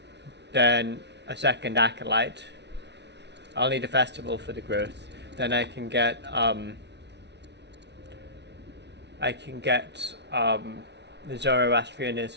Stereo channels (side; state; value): left; late; 0.50 ms